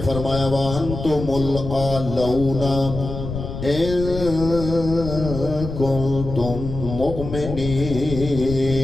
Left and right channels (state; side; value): noise; left; rumble, 7 dB below the sound